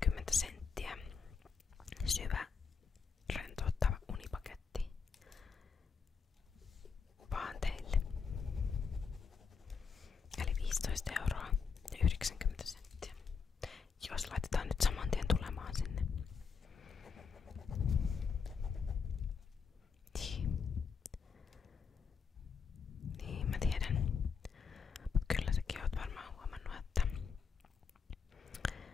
€, syvä rentouttava unipaketti vaan teille. Eli 15,90 €. Jos laitetaan nyt saman tien tulemaan sinne. Niin, mä tiedän. Mut kyllä säkin oot varmaan huomannut, että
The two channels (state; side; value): quieter; right; 5.7 dB